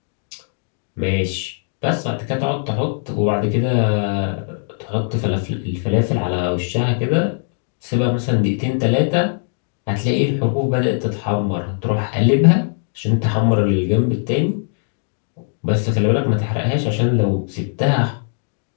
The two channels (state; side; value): silent; right; 62 dB below the other